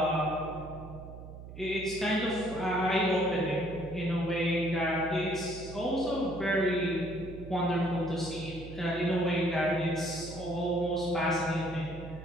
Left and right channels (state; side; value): noise; right; hum, 13 dB below the sound